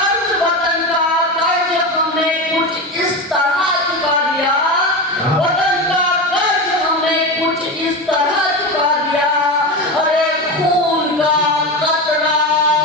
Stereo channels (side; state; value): both; normal; correlation 0.21